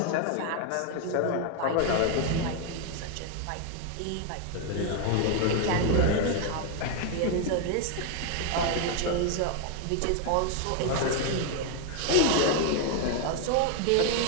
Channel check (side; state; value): both; different; correlation 0.01